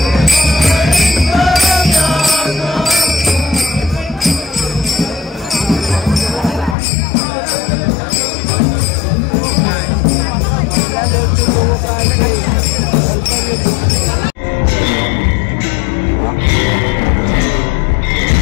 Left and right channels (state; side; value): drops out; right; at 6.8 s